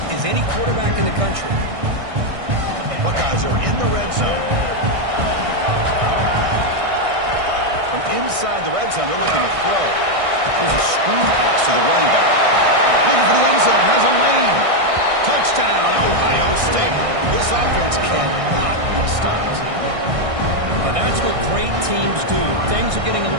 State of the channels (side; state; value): left; late; 1.6 ms